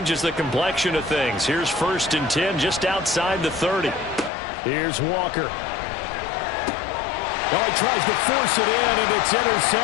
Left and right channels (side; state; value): right; drops out; at 4.3 s